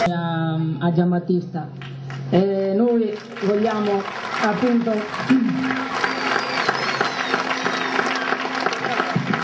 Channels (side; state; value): both; identical; correlation 1.00